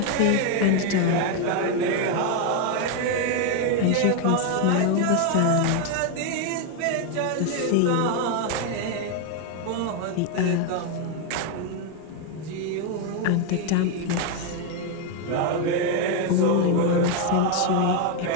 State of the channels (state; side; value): different; both; correlation 0.01